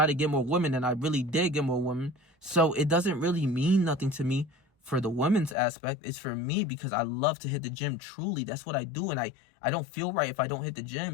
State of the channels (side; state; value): right; drops out; at 5.6 s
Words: to get more women, and I really did get more women. So it doesn't really mean nothing to me for the women's aspect. It's for me because I love to hit the gym. Truly, that's what I do. And I don't feel right if I don't hit the